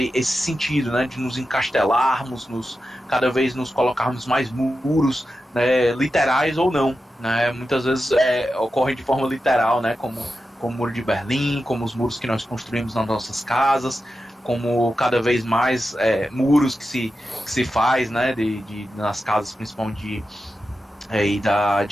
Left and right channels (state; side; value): normal; both; correlation 0.91